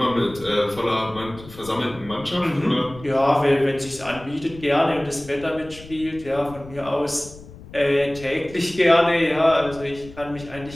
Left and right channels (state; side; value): noise; left; rumble, 18 dB below the sound